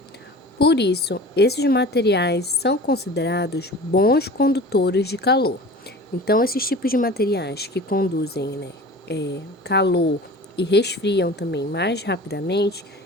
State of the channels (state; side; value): normal; both; correlation 0.39